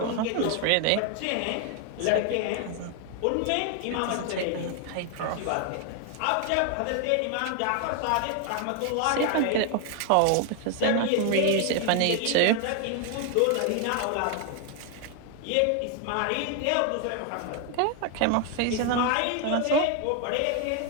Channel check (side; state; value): both; different; correlation 0.01